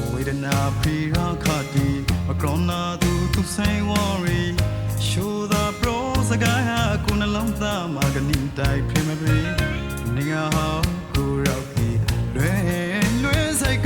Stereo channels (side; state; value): both; identical; correlation 1.00